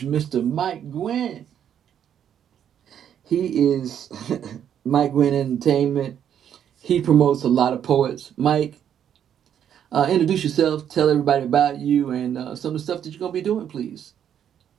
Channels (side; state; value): left; quieter; 9.3 dB